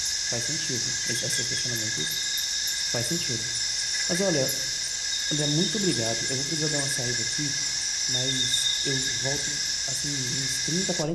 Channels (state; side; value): identical; both; correlation 1.00